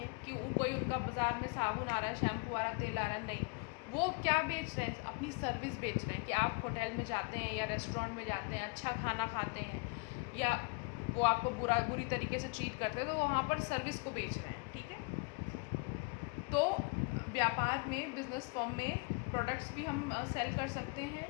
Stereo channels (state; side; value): quieter; right; 29.6 dB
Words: कि कोई उनका बाज़ार में साबुन आ रहा है, शैम्पू आ रहा है, तेल आ रहा है, नहीं, वो क्या बेच रहे हैं? अपनी सर्विस बेच रहे हैं कि आप होटल में जाते हैं या रेस्टोरेंट में जाते हैं, अच्छा खाना खाते हैं, या वो आपको बुरी तरीके से ट्रीट करते हैं, तो वहाँ पर सर्विस को बेच रहे हैं। ठीक है, तो व्यापार में, बिजनेस फर्म में प्रोडक्ट्स भी हम सेल कर सकते हैं